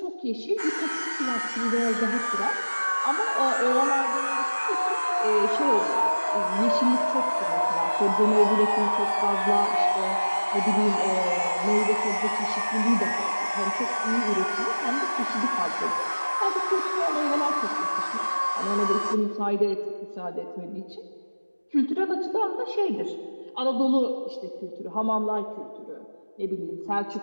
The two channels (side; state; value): both; inverted; correlation -1.00